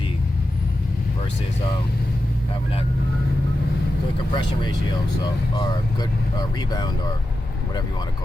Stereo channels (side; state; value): both; normal; correlation 0.91